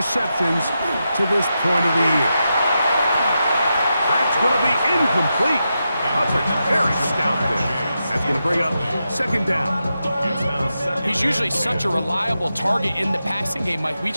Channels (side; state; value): both; inverted; correlation -0.88